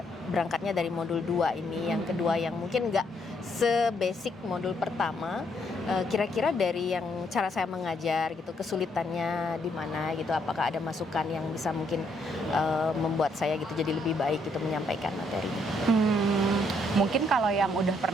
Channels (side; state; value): both; normal; correlation 0.72